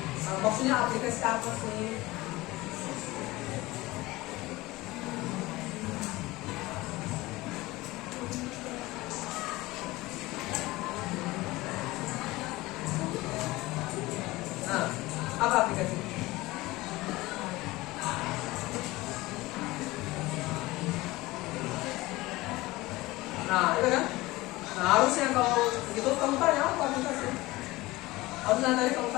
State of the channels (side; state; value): right; quieter; 19.8 dB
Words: Maksudnya aplikasi apa sih? Nah, apa aplikasi? Nah, itu kan? Nah, harusnya kalau gitu kamu tanya apa aplikasi? Harusnya tadi kamu